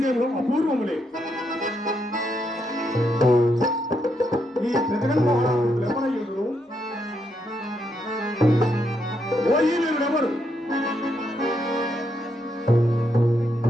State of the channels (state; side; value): normal; both; correlation 0.78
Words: అపూర్వములే. ఈ జగన్మోహనుడు ఎవరయ్యుడు? ఓ ఈ వీరుడెవరు?